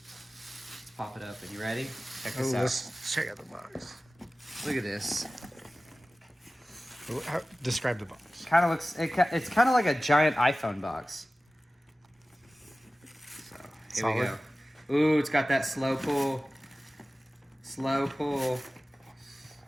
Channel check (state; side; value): normal; both; correlation 0.96